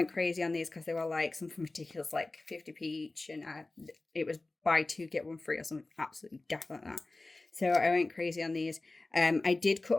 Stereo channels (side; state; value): right; quieter; 3.1 dB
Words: crazy on these because they were like something ridiculous, like 50p each, and it was buy 2 get 1 free or something absolutely daft like that. So I went crazy on these. I did cut